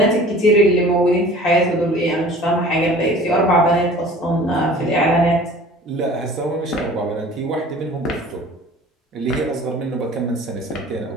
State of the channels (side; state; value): both; normal; correlation 0.45